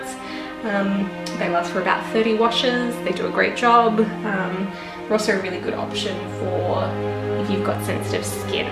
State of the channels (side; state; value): both; identical; correlation 1.00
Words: They last for about 30 washes. They do a great job. They're also a really good option for if you've got sensitive skin